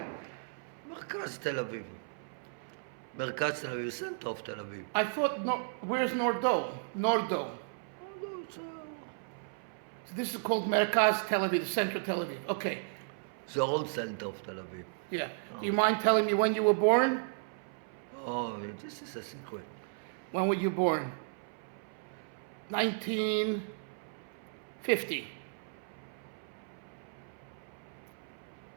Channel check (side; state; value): left; silent; 55 dB below the other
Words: מרכז תל אביב. מרכז תל אביב, center of תל אביב. I thought, no, where's Nordo? Nordo. So this is called Merkaz Tel Aviv, the center of Tel Aviv. Okay. The old center of Tel Aviv. Yeah. Do you mind telling me when you were born? Oh, this is a secret. When were you born? 1950.